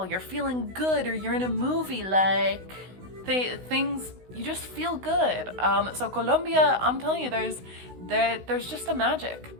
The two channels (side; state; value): left; late; 16 ms